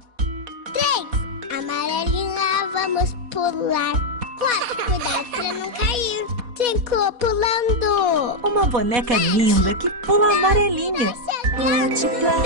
3, amarelinha, vamos pular. 4, cuidado pra não cair. 5, pulando. Uma boneca linda que pula amarelinha. Coty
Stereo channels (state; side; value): late; left; 4.1 ms